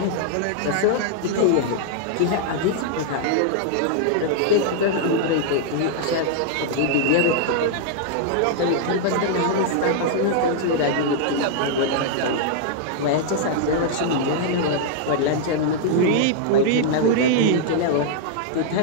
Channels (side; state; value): both; different; correlation -0.01